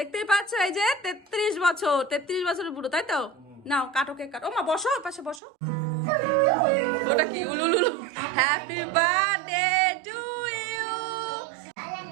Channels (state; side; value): drops out; left; at 5.4 s